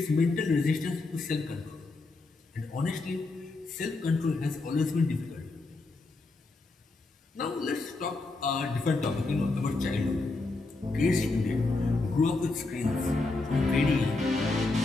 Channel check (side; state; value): right; quieter; 3.4 dB